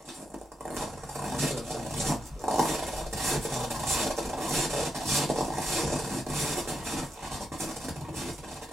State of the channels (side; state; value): both; normal; correlation 0.84